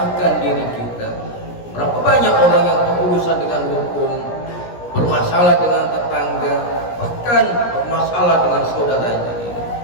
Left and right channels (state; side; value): late; right; 17 ms